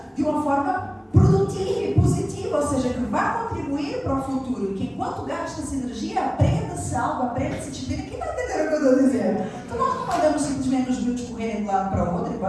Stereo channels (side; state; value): both; identical; correlation 1.00